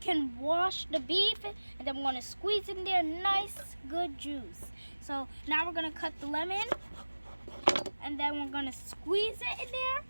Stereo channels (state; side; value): inverted; both; correlation -1.00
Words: wash the beef, and then we're gonna squeeze in there nice good juice. So now we're gonna cut the lemon, and then we're gonna squeeze it in there.